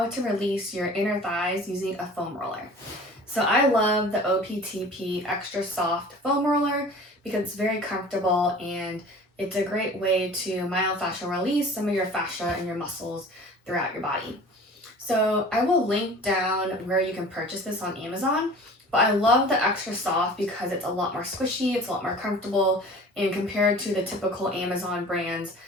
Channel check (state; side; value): normal; both; correlation 0.43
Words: to release your inner thighs using a foam roller. So I love the OPTP Extra Soft Foam Roller because it's very comfortable and it's a great way to myofascial release some of your fascia and your muscles throughout your body. So I will link down where you can purchase this on Amazon, but I love the Extra Soft because it's a lot more squishy, it's a lot more comfortable, and compared to the typical Amazon brands,